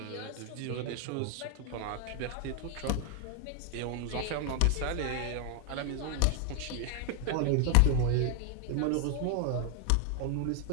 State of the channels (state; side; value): different; both; correlation 0.00